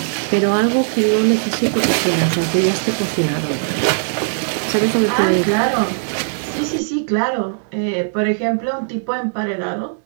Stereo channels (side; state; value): left; silent; digital silence